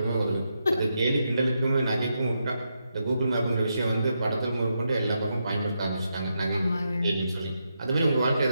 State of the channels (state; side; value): inverted; both; correlation -0.83